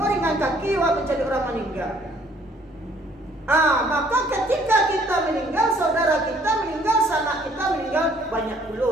ringan kaki, mencari orang meninggal. Maka ketika kita meninggal, saudara kita meninggal, sanak kita meninggal, banyak pula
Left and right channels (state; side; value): normal; both; correlation 0.61